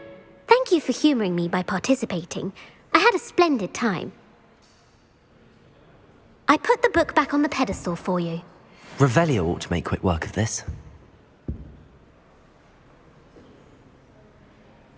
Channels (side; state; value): both; identical; correlation 1.00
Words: Thank you for humouring me by participating. I had a splendid time. I put the book back on the pedestal for you. Revelio ought to make quick work of this.